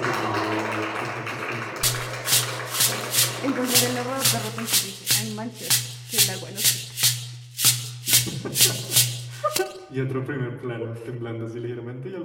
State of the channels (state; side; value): identical; both; correlation 1.00